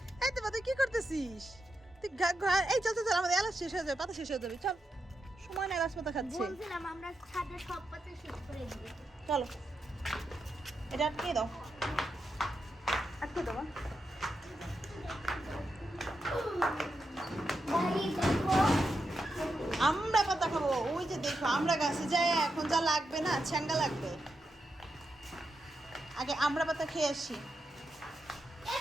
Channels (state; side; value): normal; both; correlation 0.86